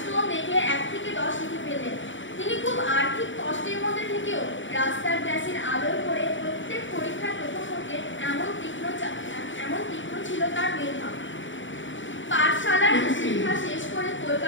দেখে 1 থেকে 10 লিখে ফেললেন। তিনি খুব আর্থিক কষ্টের মধ্যে থেকেও রাস্তার গ্যাসের আলোয় পড়ে প্রত্যেক পরীক্ষার প্রথম হতে এমন তীক্ষ্ণ ছিল তার মেধা। পাঠশালার শিক্ষা শেষ করে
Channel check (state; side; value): late; right; 0.55 ms